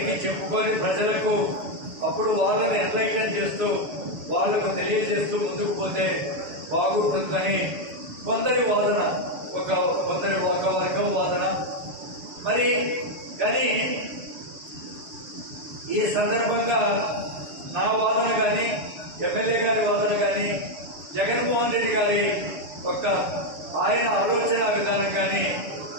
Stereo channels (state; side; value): late; left; 7.0 ms